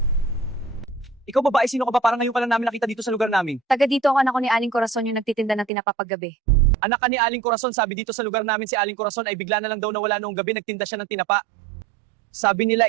Ikaw babae, sino ka ba? Parang ngayon ka lang namin nakita dito sa lugar namin. Taga dito ang anak ko ni Aling Corazon yung nagtitinda ng tinapa paggabi. Anak ka ni Aling Corazon, sabi dito sa lugar namin si Aling Corazon ay bigla na lang daw nawala noong gabi, nagtinda siya ng tinapa. Sabi nila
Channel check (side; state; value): left; drops out; at 5.7 s